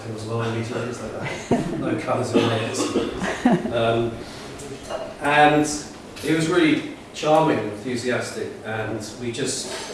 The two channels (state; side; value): identical; both; correlation 1.00